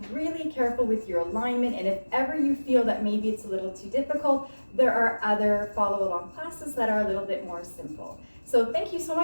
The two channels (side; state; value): both; inverted; correlation -1.00